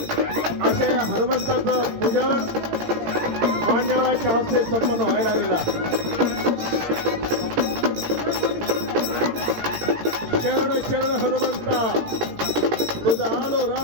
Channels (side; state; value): left; late; 17 ms